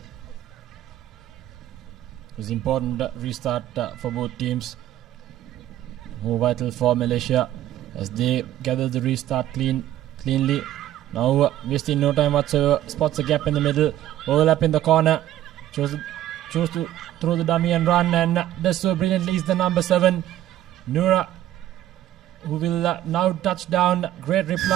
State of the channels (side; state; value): left; quieter; 12.9 dB